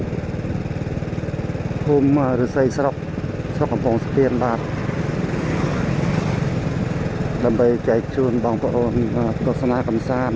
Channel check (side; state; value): both; identical; correlation 1.00